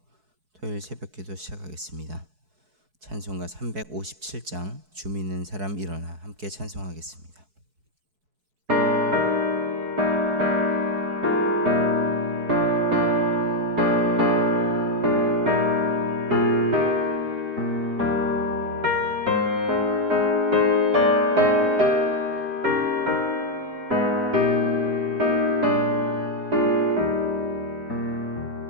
토요일 새벽기도 시작하겠습니다. 찬송가 357장 주 믿는 사람 일어나 함께 찬송하겠습니다.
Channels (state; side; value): late; left; 4.7 ms